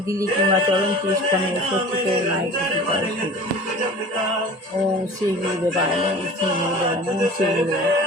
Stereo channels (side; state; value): both; normal; correlation 0.41